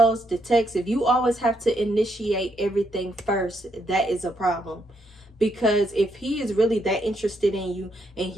the texts, if you always have to initiate everything first, that is a problem. Because if he is really that interested in you and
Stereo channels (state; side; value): normal; both; correlation 0.76